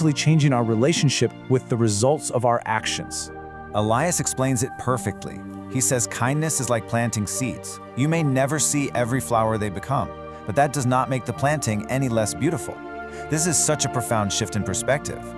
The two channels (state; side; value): identical; both; correlation 1.00